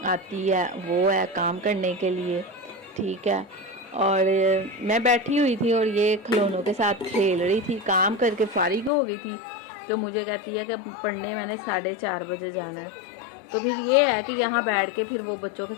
आती है वो है काम करने के लिए, ठीक है। और मैं बैठी हुई थी और ये खिलौनों के साथ खेल रही थी, काम करके फारिग हो गई थी। तो मुझे कहती है कि पढ़ने मैंने 4:30 बजे जाना है। तो फिर ये है कि यहाँ बैठ के फिर वो बच्चों के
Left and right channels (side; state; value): right; drops out; at 8.9 s